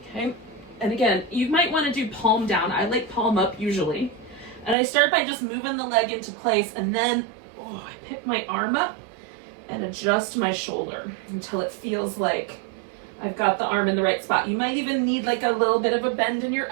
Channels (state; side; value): drops out; left; at 4.8 s